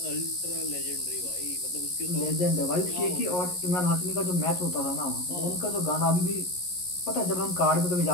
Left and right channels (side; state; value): right; late; 11 ms